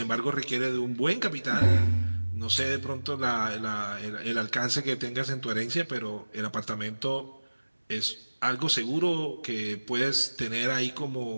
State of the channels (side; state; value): both; inverted; correlation -1.00